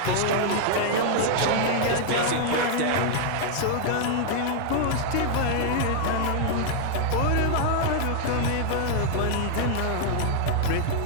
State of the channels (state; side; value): different; both; correlation 0.00